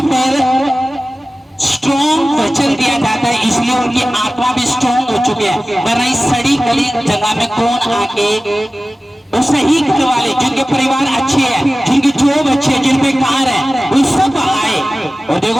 पर स्ट्रॉन्ग वचन दिया जाता है, इसलिए उनकी आत्मा भी स्ट्रॉन्ग हो चुकी है। वरना इस सड़ी गली जगह में कौन आके, वो सही घर वाले जिनके परिवार अच्छे हैं, जिनकी जॉब अच्छी है, जिन पे कार है, वो सब आए और देखो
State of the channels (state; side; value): normal; both; correlation 0.96